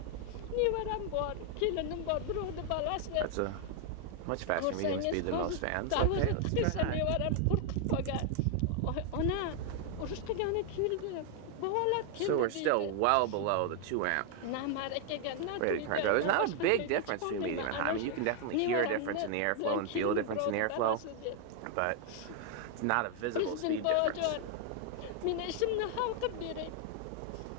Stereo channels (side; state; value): both; different; correlation 0.00